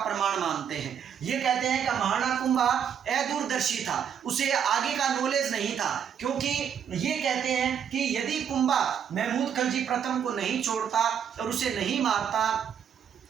मानते हैं। ये कहते हैं कि महाराणा कुंभा अदूरदर्शी था, उसे आगे का नॉलेज नहीं था, क्योंकि ये कहते हैं कि यदि कुंभा महमूद खलजी प्रथम को नहीं छोड़ता और उसे नहीं मारता,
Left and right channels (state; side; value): quieter; left; 8.2 dB